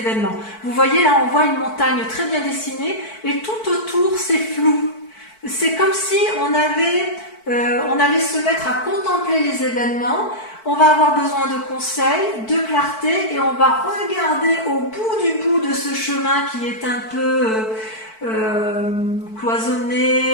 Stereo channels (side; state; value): right; late; 4.5 ms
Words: Vous voyez, là, on voit une montagne très bien dessinée, et tout autour, c'est flou. C'est comme si on allait se mettre à contempler les événements, on va avoir besoin de conseils, de clarté, et on va regarder au bout de ce chemin qui est un peu